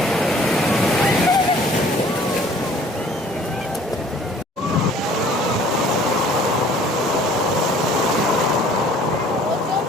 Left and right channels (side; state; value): both; normal; correlation 0.53